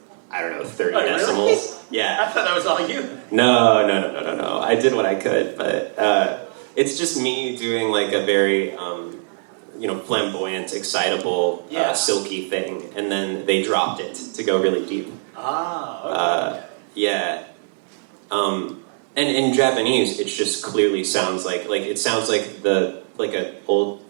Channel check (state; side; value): silent; left; 64 dB below the other